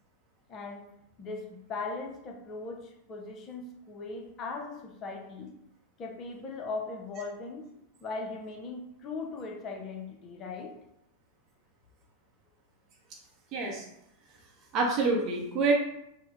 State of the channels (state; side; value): normal; both; correlation 0.26